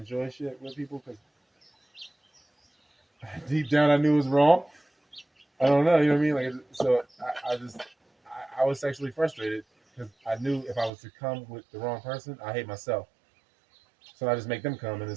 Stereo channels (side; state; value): left; drops out; at 10.9 s